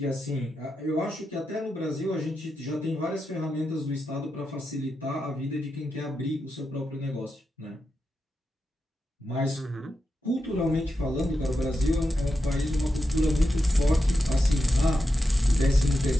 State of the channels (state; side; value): normal; both; correlation 0.88